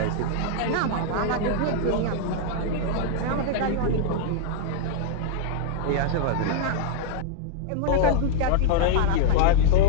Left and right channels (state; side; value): different; both; correlation 0.00